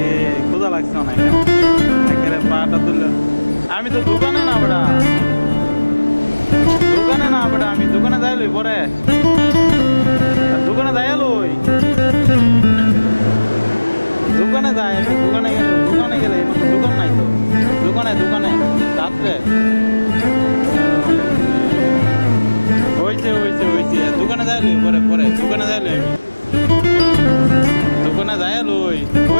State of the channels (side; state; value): both; inverted; correlation -1.00